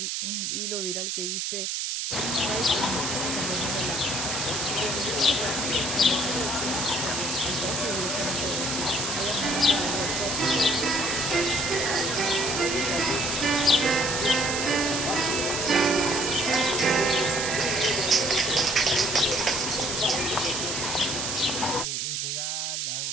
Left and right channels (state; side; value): noise; right; hiss, 1 dB below the sound